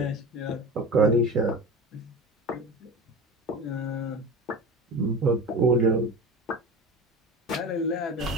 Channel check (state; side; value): normal; both; correlation 0.30